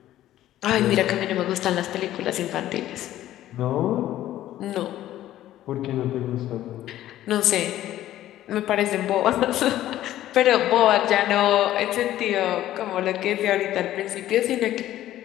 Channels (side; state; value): right; quieter; 13.4 dB